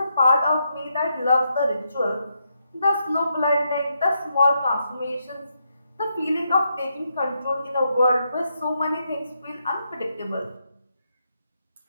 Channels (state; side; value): inverted; both; correlation -0.81